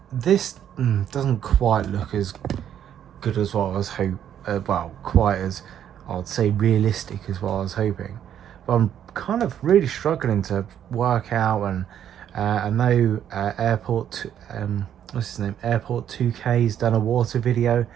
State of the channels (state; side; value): quieter; left; 9.8 dB